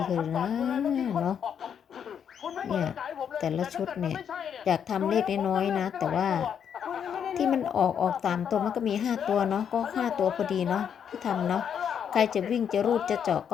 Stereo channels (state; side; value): quieter; right; 8.1 dB